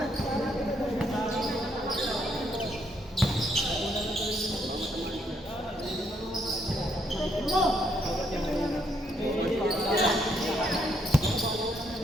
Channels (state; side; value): normal; both; correlation 0.73